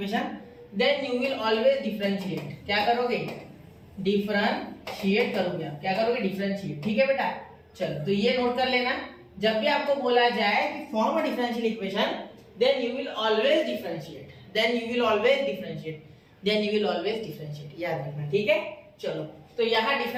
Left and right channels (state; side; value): identical; both; correlation 1.00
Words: then you will always differentiate. क्या करोगे? डिफरेंशिएट करोगे आप, क्या करोगे? डिफरेंशिएट, ठीक है बेटा। चलो तो ये नोट कर लेना, जब भी आपको बोला जाए कि form a differential equation, then you will always differentiate, then you will always differentiate, then you will always differentiate, याद रखना, ठीक है। चलो तो यहाँ